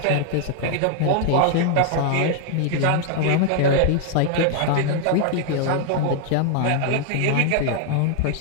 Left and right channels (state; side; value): different; both; correlation 0.00